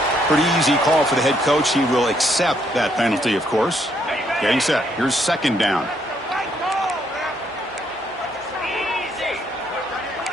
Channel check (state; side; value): normal; both; correlation 0.72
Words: Pretty easy call for the head coach. He will accept that penalty, of course. Getting set. Here's second down.